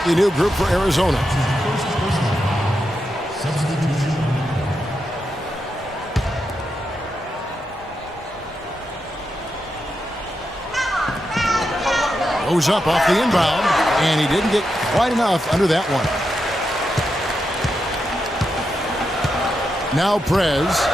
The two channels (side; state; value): both; normal; correlation 0.86